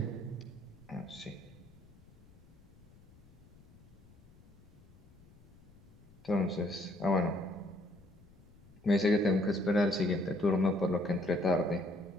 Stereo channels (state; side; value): noise; left; rumble, 24 dB below the sound